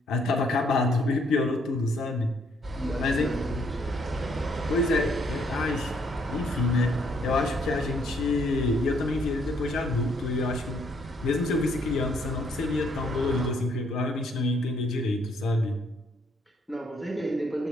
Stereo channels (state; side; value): normal; both; correlation 0.68